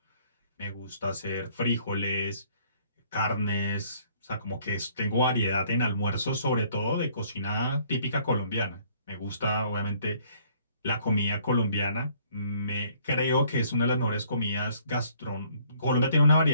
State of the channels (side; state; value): both; inverted; correlation -0.60